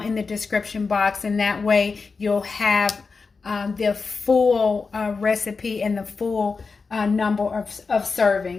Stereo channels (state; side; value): quieter; right; 4.6 dB